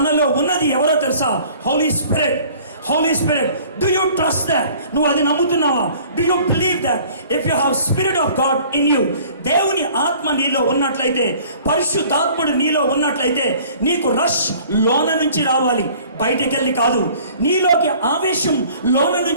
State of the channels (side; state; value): both; inverted; correlation -0.51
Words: ఉన్నది ఎవరో తెలుసా? Holy Spirit. Do you trust that? నువ్వు అది నమ్ముతున్నావా? Do you believe that? If you have Spirit of God in you, దేవుని ఆత్మ నీలో ఉన్నట్లయితే, పరిశుద్ధాత్ముడు నీలో ఉన్నట్లయితే, నీకు రష్ లోన నుంచి రావాలి, బయటకెళ్ళి కాదు. నీలోకి ఆవేశం లోన